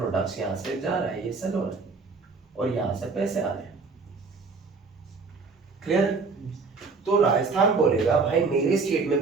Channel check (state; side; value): quieter; left; 4.4 dB